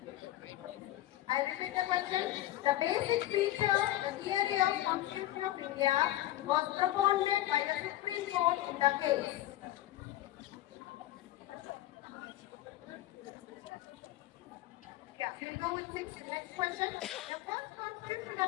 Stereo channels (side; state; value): right; quieter; 14.8 dB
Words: I repeat the question. The basic feature, the theory of Constitution of India was propounded by the Supreme Court in the case. Yeah, we'll go with next question. The first Constitution